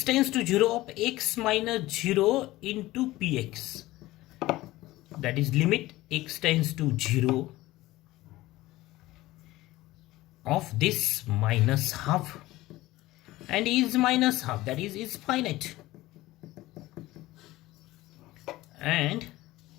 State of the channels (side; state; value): right; quieter; 17.7 dB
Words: tends to 0 of x minus 0 into px. That is limit x tends to 0 of this minus half, and is minus half, that is finite. And